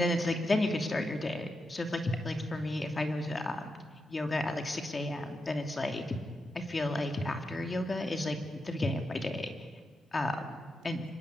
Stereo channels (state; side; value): normal; both; correlation 0.86